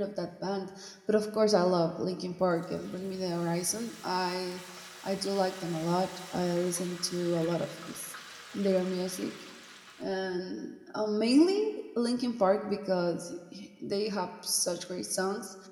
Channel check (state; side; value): identical; both; correlation 1.00